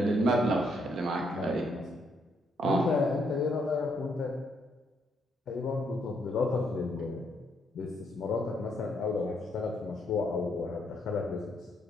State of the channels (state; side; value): normal; both; correlation 0.74